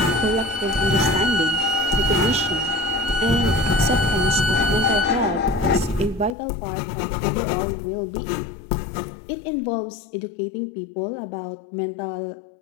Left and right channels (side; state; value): right; drops out; at 6.4 s